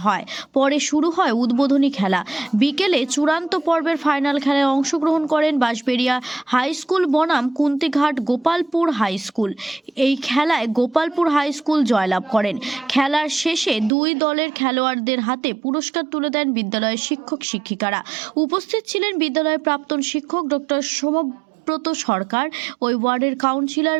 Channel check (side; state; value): left; drops out; at 13.9 s